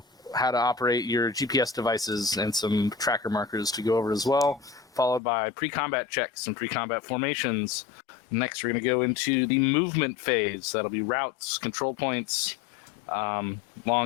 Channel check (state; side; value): drops out; right; at 5.2 s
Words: how to operate your GPS devices and some tracker markers to go over as well, followed by pre-combat checks and pre-combat formations. Next, we're going to go into the movement phase. That'll be routes, control points,